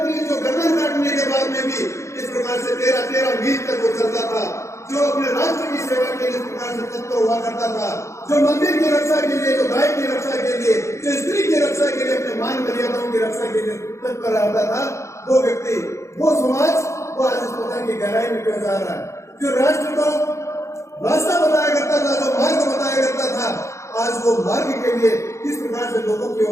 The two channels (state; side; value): late; right; 0.14 ms